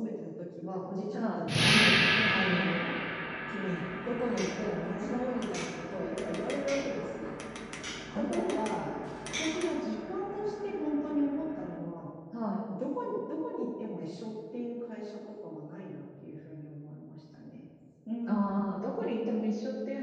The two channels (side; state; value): both; identical; correlation 1.00